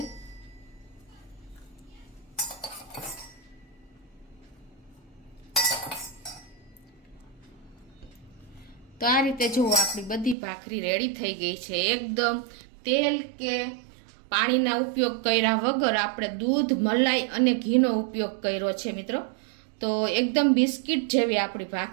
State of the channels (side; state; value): left; drops out; at 10.4 s